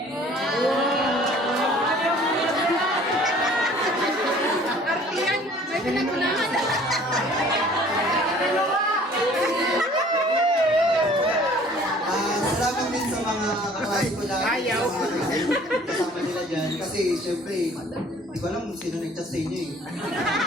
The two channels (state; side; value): normal; both; correlation 0.52